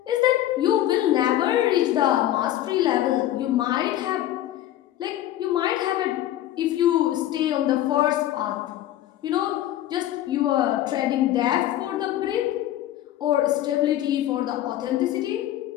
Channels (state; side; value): quieter; right; 13.1 dB